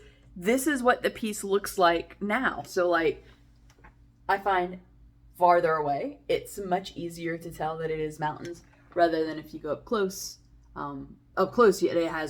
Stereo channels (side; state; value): both; identical; correlation 1.00